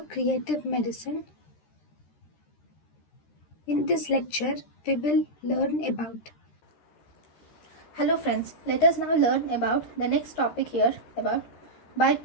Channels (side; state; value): right; late; 13 ms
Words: Creative Medicine. In this lecture, we will learn about. Hello friends, let us now learn about the next topic here about